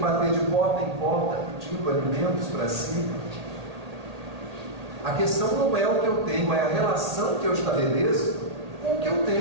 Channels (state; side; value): late; left; 1.8 ms